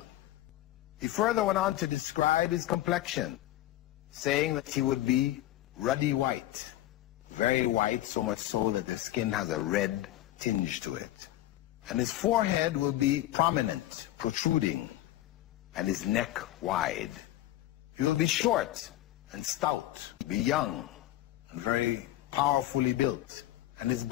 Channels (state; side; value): quieter; right; 14.7 dB